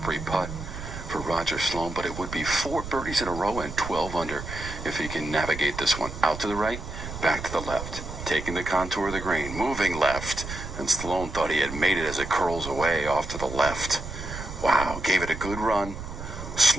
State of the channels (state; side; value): noise; right; rumble, 9 dB below the sound